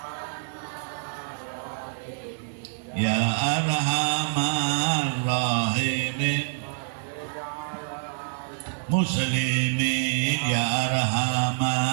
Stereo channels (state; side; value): silent; left; digital silence